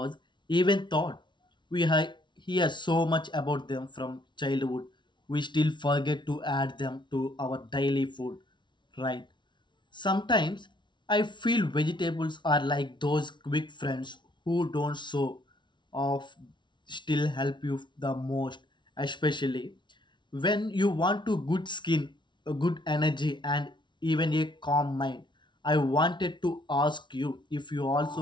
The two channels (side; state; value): right; late; 0.23 ms